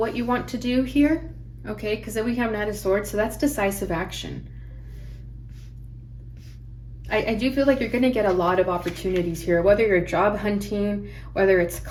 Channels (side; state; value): both; identical; correlation 1.00